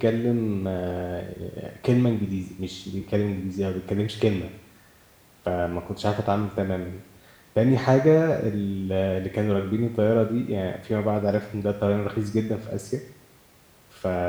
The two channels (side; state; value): both; identical; correlation 1.00